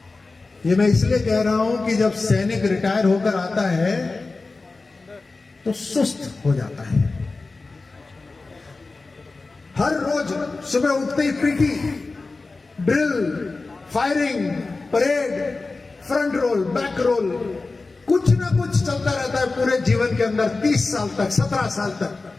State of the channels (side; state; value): right; quieter; 3.6 dB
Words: ये मैं इसलिए कह रहा हूं कि जब सैनिक रिटायर होकर आता है तो सुस्त हो जाता है। हर रोज सुबह उठते ही PT, drill, firing, parade, front roll, back roll, कुछ ना कुछ चलता रहता है पूरे जीवन के अंदर 30 साल तक, 17 साल तक,